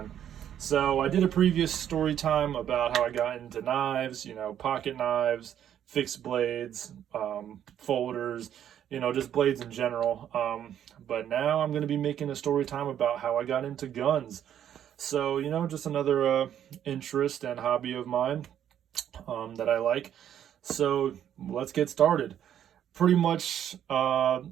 So I did a previous story time about how I got into knives, pocket knives, fixed blades, folders, just blades in general. But now I'm going to be making a story time about how I got into guns. So, just another interest and hobby of mine that I like. So let's get started. Pretty much,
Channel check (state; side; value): quieter; left; 10.1 dB